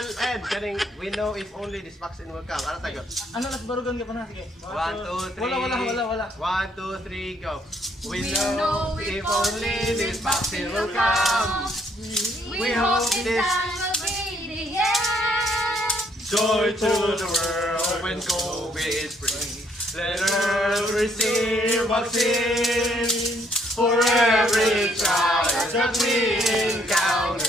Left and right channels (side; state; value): both; normal; correlation 0.68